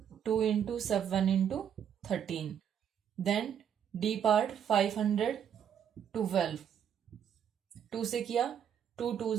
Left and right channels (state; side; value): quieter; left; 8.8 dB